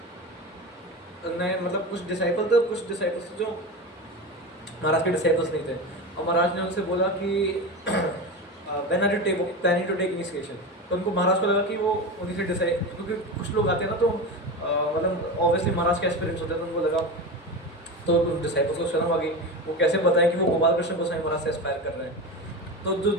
उन्होंने मतलब कुछ डिसाइपल थे, कुछ डिसाइपल्स जो महाराज के डिसाइपल्स नहीं थे, और महाराज ने उनसे बोला कि when are you planning to take initiation. तो उनको महाराज को लगा कि वो उन्हीं से डिसाइड, क्योंकि कुछ लोग आते हैं ना तो मतलब ऑब्वियसली महाराज का एक्सपीरियंस होता है, तो उनको लगा, तो डिसाइपल्स को शर्म आ गई, वो कैसे बताएं कि वो गोपाल कृष्ण गोस्वामी महाराज से एस्पायर कर रहे हैं। तो जो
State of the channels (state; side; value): normal; both; correlation 0.24